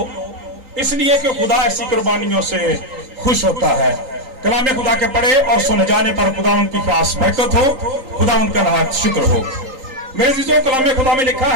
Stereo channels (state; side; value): late; left; 3.8 ms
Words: इसलिए कि खुदा ऐसी कुर्बानियों से खुश होता है। कलाम खुदा के पढ़े और सुने जाने पर खुदा उनकी खास बरकत हो, खुदा उनका नहायत शुक्र हो। मेरे अज़ीज़ों, कलाम खुदा में लिखा